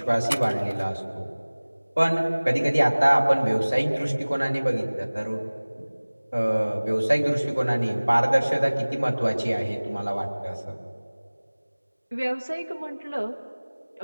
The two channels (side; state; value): both; inverted; correlation -1.00